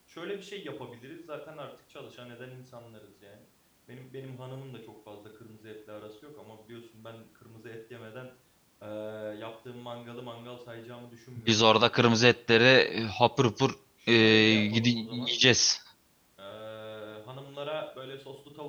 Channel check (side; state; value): both; identical; correlation 1.00